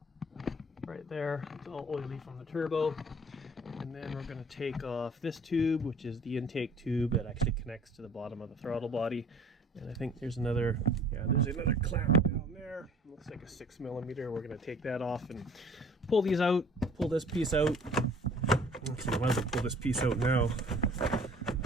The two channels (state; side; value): normal; both; correlation 0.51